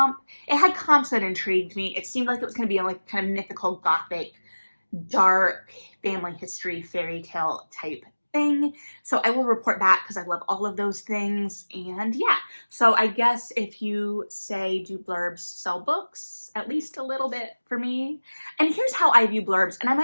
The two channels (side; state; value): both; inverted; correlation -1.00